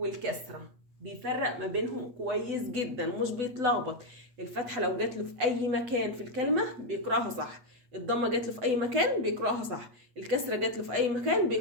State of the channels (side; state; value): left; late; 8.0 ms